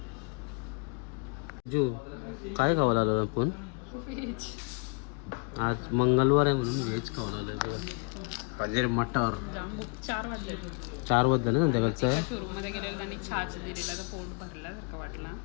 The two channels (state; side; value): quieter; right; 36.0 dB